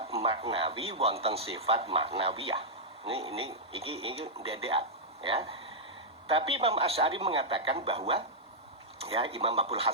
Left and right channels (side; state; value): both; normal; correlation -0.08